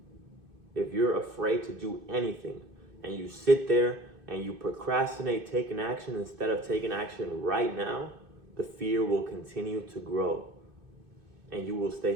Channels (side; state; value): left; late; 2.6 ms